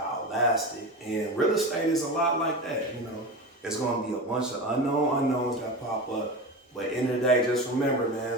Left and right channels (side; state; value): both; normal; correlation 0.25